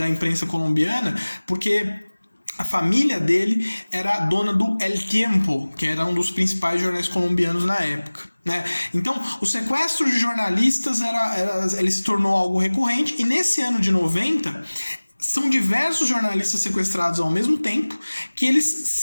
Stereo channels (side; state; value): both; inverted; correlation -1.00